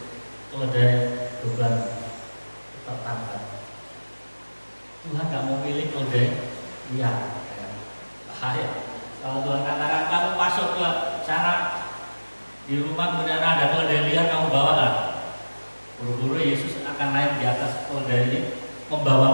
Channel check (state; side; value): inverted; both; correlation -1.00